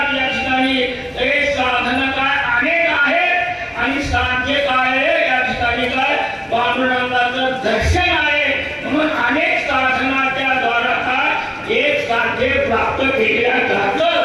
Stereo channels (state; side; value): identical; both; correlation 1.00